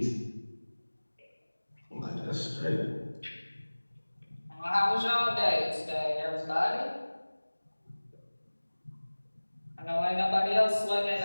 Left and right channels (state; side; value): inverted; both; correlation -1.00